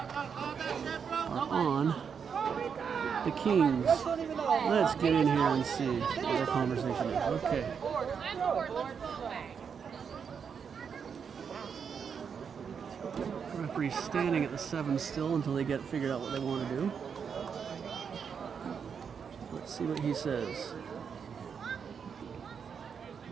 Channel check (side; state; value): left; quieter; 6.7 dB